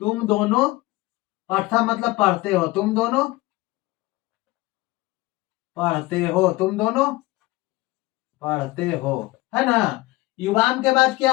तुम दोनों, पठा मतलब पढ़ते हो, तुम दोनों पढ़ते हो, तुम दोनों पढ़ते हो, है ना। युवाम के बाद क्या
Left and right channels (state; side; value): quieter; right; 19.8 dB